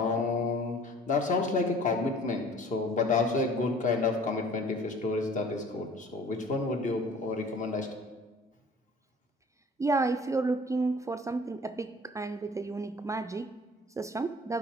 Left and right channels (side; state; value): both; normal; correlation 0.48